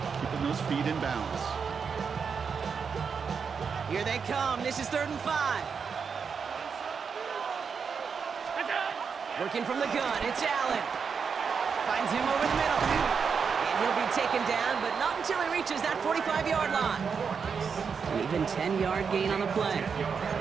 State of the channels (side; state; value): left; quieter; 6.0 dB